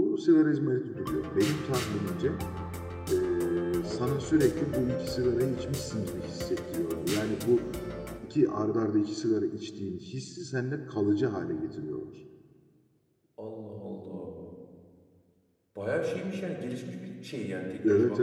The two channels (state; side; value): identical; both; correlation 1.00